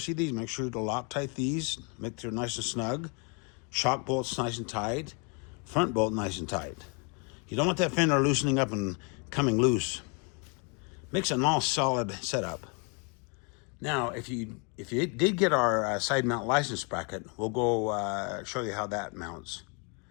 these. Make sure to Loctite these, make sure nice and snug. Shock bolts nice and tight. Front bolt nice and tight. You don't want that fender loosening up and coming loose. Makes a nice solid setup. Now, if you did get our side mount license bracket, we'll go show you how that mounts.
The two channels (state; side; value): quieter; right; 35.1 dB